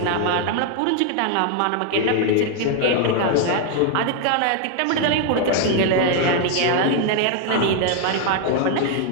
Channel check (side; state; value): both; different; correlation 0.01